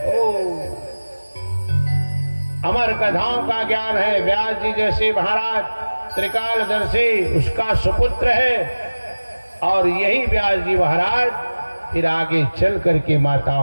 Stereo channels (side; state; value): both; inverted; correlation -1.00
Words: अमर कथाओं का ज्ञान है। व्यास जी जैसे महाराज त्रिकालदर्शी उसका सुपुत्र है। और यही व्यास जी महाराज फिर आगे चल करके